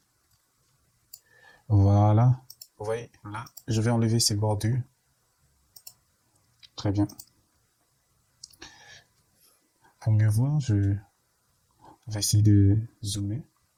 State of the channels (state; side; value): identical; both; correlation 1.00